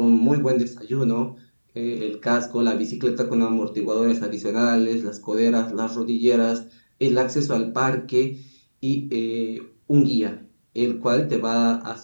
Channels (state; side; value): inverted; both; correlation -1.00